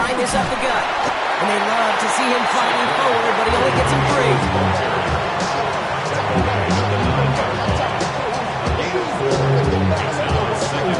this up the gut. And they love to see him fighting forward, but he only gets him free.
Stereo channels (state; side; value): identical; both; correlation 1.00